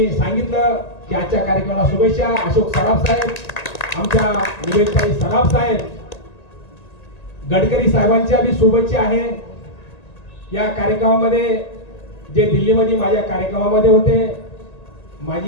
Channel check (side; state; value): right; late; 1.9 ms